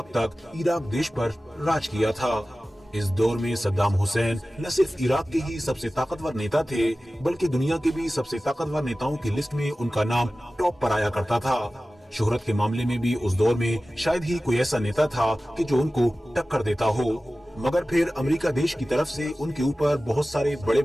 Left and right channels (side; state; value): both; normal; correlation 0.96